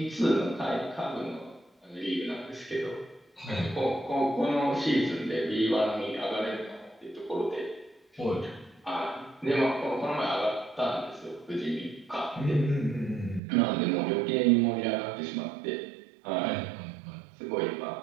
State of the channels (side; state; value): left; drops out; at 13.4 s